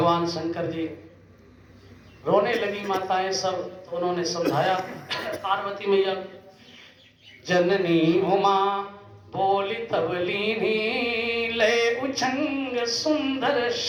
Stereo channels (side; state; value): both; identical; correlation 1.00